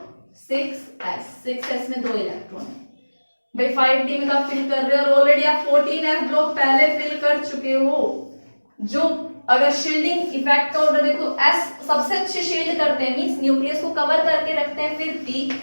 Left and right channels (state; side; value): inverted; both; correlation -1.00